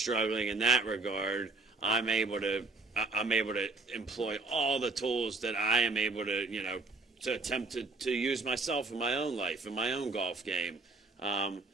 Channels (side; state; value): left; quieter; 3.5 dB